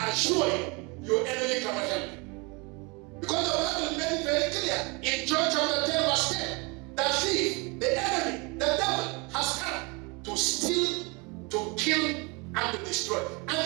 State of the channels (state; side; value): quieter; left; 29.0 dB